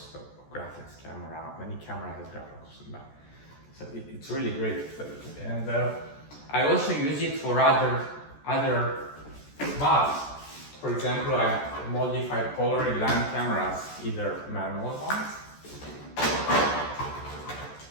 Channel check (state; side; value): late; right; 14 ms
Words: So graphics camera, many camera has graphics in the back. So it's really great. And I also use it for other mods. For example, I modified Polaroid lamp cameras, either manual ones.